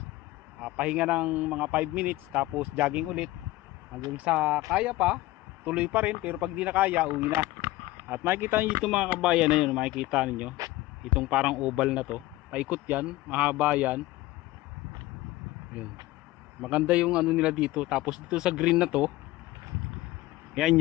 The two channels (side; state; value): right; quieter; 17.9 dB